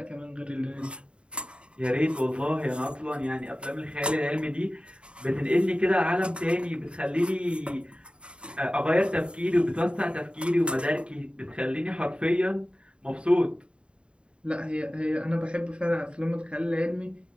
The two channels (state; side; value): late; left; 0.055 ms